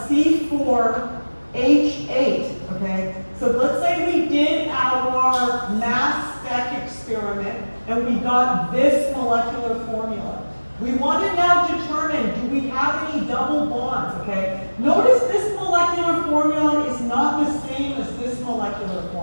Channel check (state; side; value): inverted; both; correlation -1.00